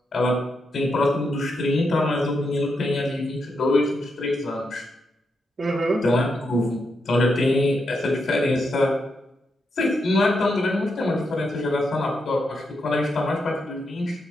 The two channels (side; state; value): both; normal; correlation 0.83